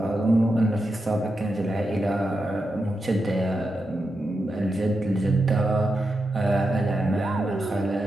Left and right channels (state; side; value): normal; both; correlation 0.87